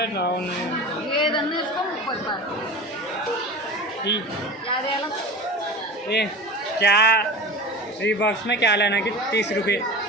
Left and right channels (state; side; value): normal; both; correlation 0.31